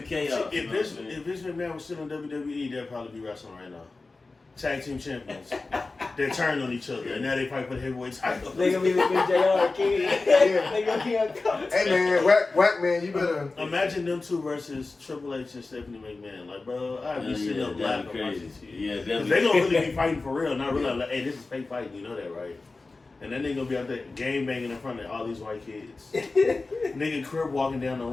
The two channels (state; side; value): quieter; right; 3.6 dB